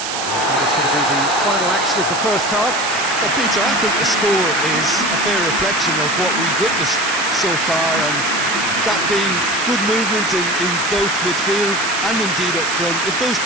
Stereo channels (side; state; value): right; noise; hiss, 4 dB below the sound